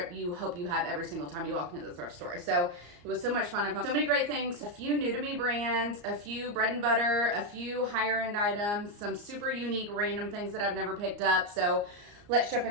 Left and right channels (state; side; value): late; left; 34 ms